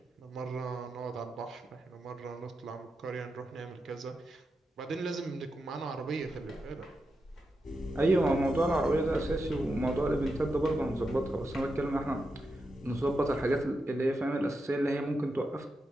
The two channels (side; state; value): both; normal; correlation 0.87